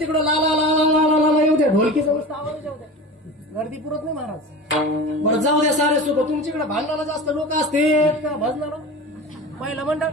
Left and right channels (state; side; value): normal; both; correlation 0.32